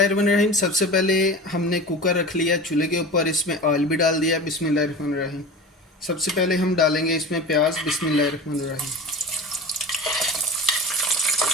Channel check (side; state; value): both; normal; correlation 0.33